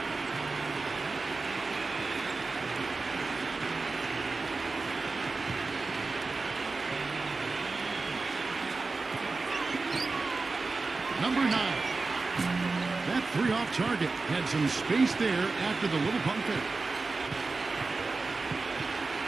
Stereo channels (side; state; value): left; quieter; 3.8 dB